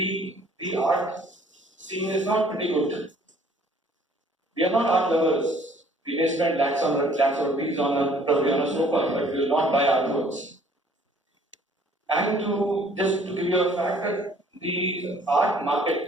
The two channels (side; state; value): both; normal; correlation 0.58